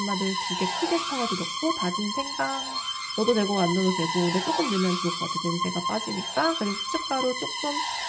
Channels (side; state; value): both; identical; correlation 1.00